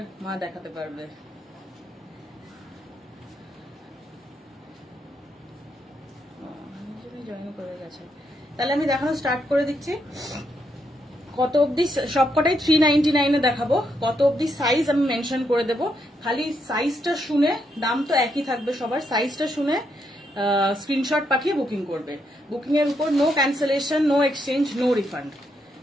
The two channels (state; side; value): normal; both; correlation 0.78